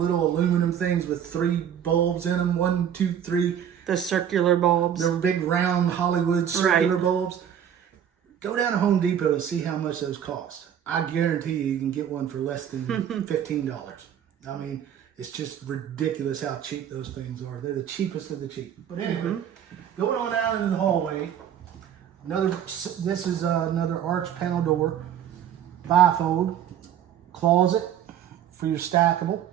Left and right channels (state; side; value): quieter; left; 9.4 dB